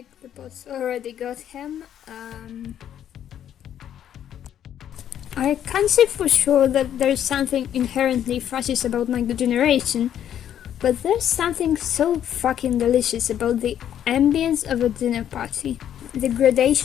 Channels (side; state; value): right; quieter; 10.2 dB